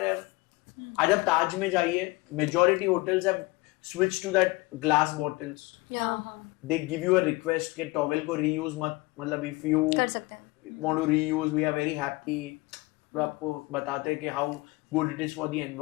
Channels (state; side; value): quieter; right; 23.1 dB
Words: यार, आज आप ताज में जाइए, majority hotels have switch to that glass bottles. They give you a request कि टॉवेल को रीयूज मत, मतलब इफ यू कर सकते हैं, want to reuse, we are very happy. तो आपको बताते हैं कि how good it is for the